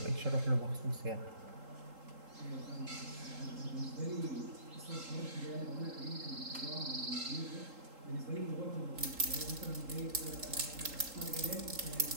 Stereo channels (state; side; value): late; left; 3.8 ms